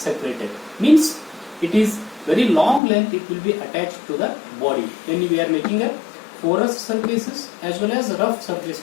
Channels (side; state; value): right; drops out; at 2.8 s